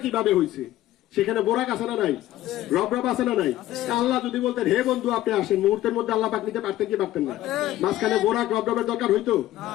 কিভাবে হয়েছে? সেখানে বোরাক আছে না নাই? রব আছে না নাই? আল্লাহ যদি বলতেন হে বন্ধু আপনি আসেন, মুহূর্তের মধ্যে আল্লাহ পাক নিতে পারতেন কি পারতেন না? মাঝখানে বোরাক রবের দরকার হইতো?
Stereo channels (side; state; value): right; quieter; 14.6 dB